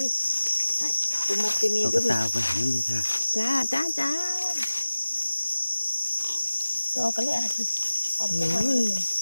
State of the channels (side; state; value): both; inverted; correlation -1.00